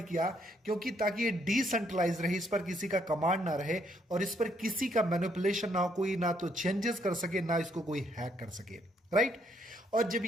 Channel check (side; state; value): both; normal; correlation 0.71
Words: किया? क्योंकि ताकि ये डिसेंट्रलाइज रहे, इस पर किसी का कमांड ना रहे और इस पर किसी का मैनिपुलेशन ना हो, कोई ना तो चेंजेस कर सके ना इसको कोई हैक कर सके, राइट। और जब